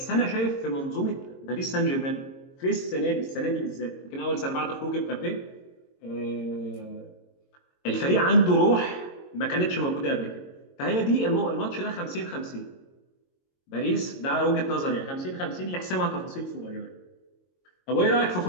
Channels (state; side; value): late; right; 22 ms